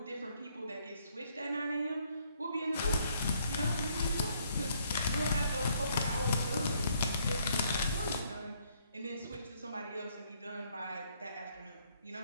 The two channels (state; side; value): inverted; both; correlation -0.69